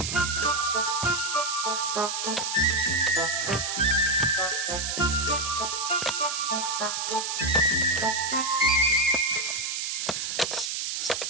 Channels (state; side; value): noise; right; hiss, 2 dB below the sound